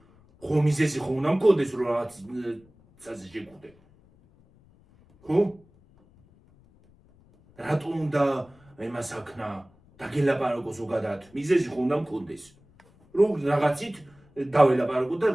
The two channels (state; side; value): noise; left; rumble, 29 dB below the sound